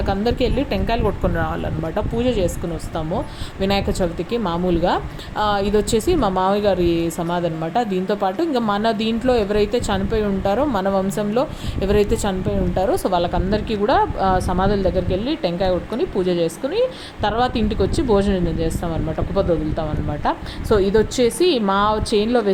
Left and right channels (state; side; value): identical; both; correlation 1.00